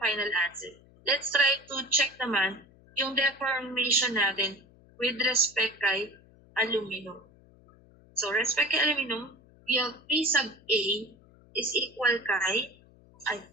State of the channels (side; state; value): left; noise; hum, 27 dB below the sound